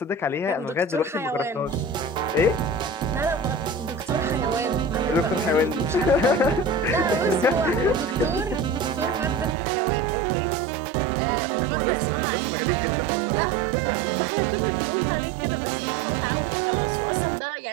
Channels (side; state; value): left; drops out; at 9.6 s